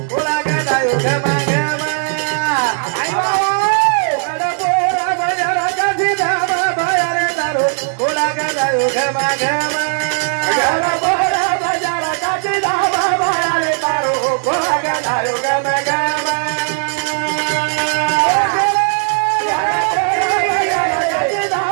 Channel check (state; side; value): silent; left; 69 dB below the other